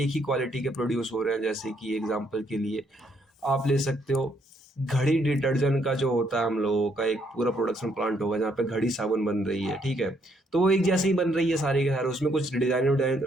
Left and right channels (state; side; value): normal; both; correlation 0.71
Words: ही क्वालिटी के प्रोड्यूस हो रहे हैं। जैसे कि एग्जांपल के लिए आप ले सकते हो, घड़ी डिटर्जेंट का जो होता है हम लोगों का एक पूरा प्रोडक्शन प्लांट होगा जहाँ पे घड़ी साबुन बन रही है, ठीक है। तो वो एक जैसे ही बन रही है सारे के सारे, उसमें कुछ डिजाइन